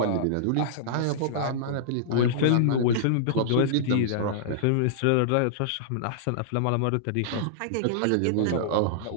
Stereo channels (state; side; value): different; both; correlation -0.02